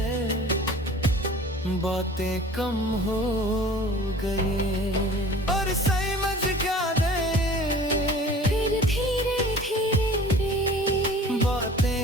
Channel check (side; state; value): both; normal; correlation 0.45